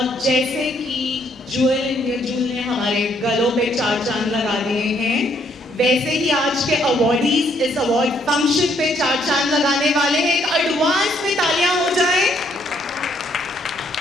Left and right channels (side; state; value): both; normal; correlation 0.69